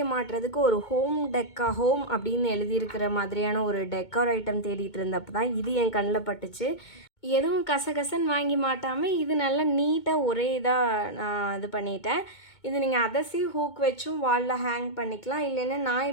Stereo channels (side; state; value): right; late; 2.2 ms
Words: மாட்டுறதுக்கு ஒரு ஹோம் அப்படின்னு எழுதியிருக்கிற மாதிரியான ஒரு டெக்கார் ஐட்டம் தேடிட்டு இருந்தப்போ தான் இது என் கண்ணில் பட்டுச்சு. எதுவும் கசகசன்னு வாங்கி மாட்டாமல் இது நல்லா நீட்டாக ஒரே இதாக நான் இது பண்ணிட்டேன். இது நீங்கள் அதசி ஹூக் வச்சும் வாலில் ஹேங் பண்ணிக்கலாம். இல்லைன்னா நான்